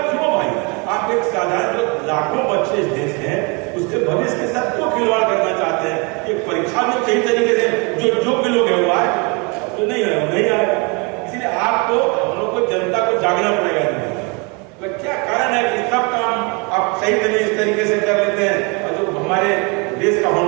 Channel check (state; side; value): quieter; left; 30.9 dB